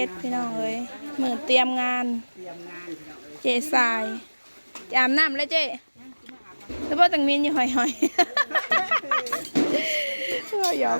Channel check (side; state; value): both; inverted; correlation -1.00